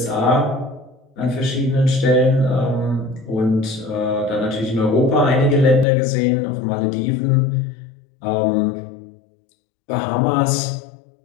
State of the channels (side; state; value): right; drops out; at 5.9 s